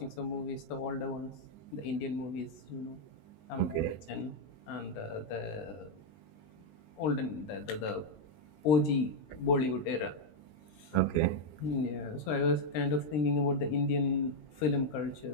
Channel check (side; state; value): right; late; 20 ms